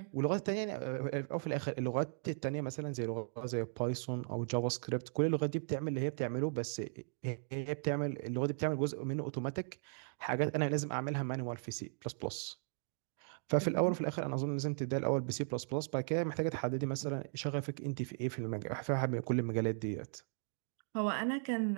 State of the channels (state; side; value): silent; left; digital silence